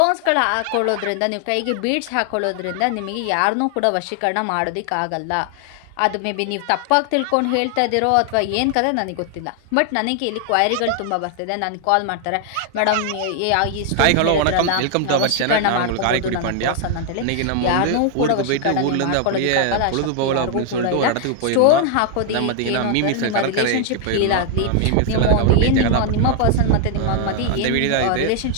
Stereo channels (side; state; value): both; different; correlation 0.00